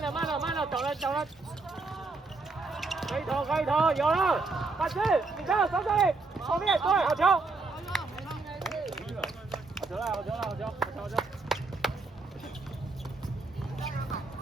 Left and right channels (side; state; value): left; quieter; 3.7 dB